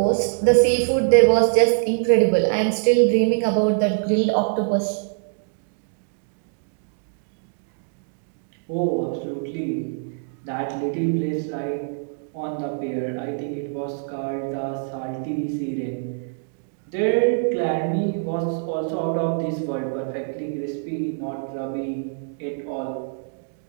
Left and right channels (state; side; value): silent; left; digital silence